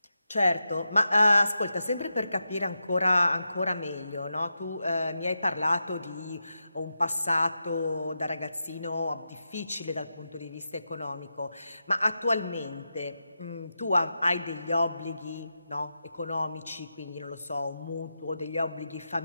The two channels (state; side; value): inverted; both; correlation -0.89